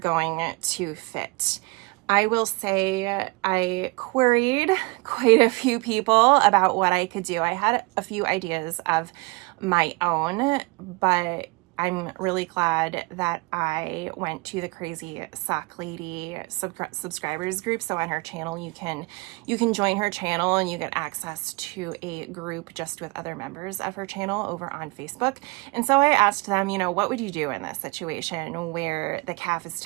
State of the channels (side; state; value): left; quieter; 26.5 dB